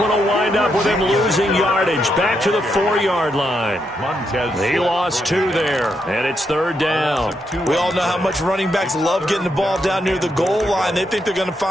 will wind up with him losing yardage. Back to the 4-yard line. He lost 2 there. And it's 3rd down. We all know how much running backs love getting the ball down near the goal line. They think they're going to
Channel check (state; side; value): normal; both; correlation 0.80